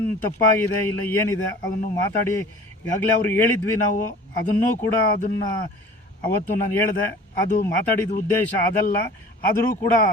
ತಪ್ಪಾಗಿದೆ ಇಲ್ಲ ಏನಿದೆ ಅದನ್ನು ಮಾತಾಡಿ ಈಗಾಗಲೇ ಅವ್ರಿಗೆ ಹೇಳಿದ್ವಿ ನಾವು, ಅದನ್ನೂ ಕೂಡ ಅದನ್ನು ಅವತ್ತು ನಾನು ಹೇಳಿದೆ, ಅದು ಮಾತಾಡಿದ ಉದ್ದೇಶ ಅದಲ್ಲ. ಆದರೂ ಕೂಡ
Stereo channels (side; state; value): both; normal; correlation 0.44